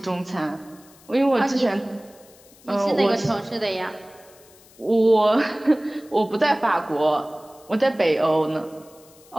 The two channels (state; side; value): noise; left; hiss, 26 dB below the sound